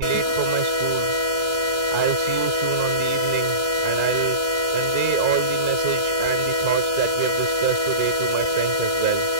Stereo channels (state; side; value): late; left; 1.4 ms